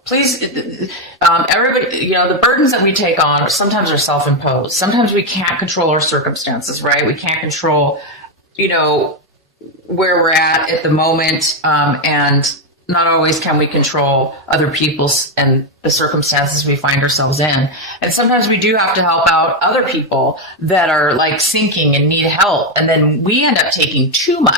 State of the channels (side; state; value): both; normal; correlation 0.06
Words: Please, everybody, the burdens that we take on sometimes are self-imposed. Sometimes we can't control our circumstances, right? We can't control, where we're at the moment. And not always can we control other people's and the circumstances we find ourselves in. And sometimes we do have to help out other people that are like sinking and need help. And then we end up taking too